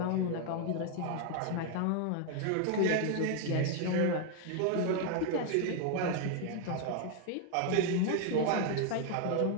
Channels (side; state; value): both; different; correlation 0.00